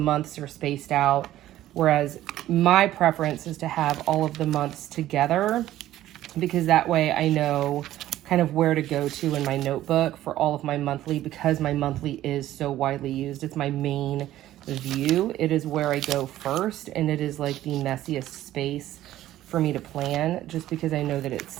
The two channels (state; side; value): quieter; left; 13.8 dB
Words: are spaced out. Whereas my preference is to have all of the months together, because that way I know kind of where to go to in my notebook for all of my monthly, because my monthly is so widely used. It's my main view. It is where I go first, and it is like the messiest space for me to plan, just because I know that